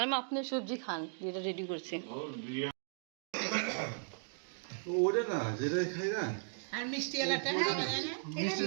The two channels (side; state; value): left; silent; digital silence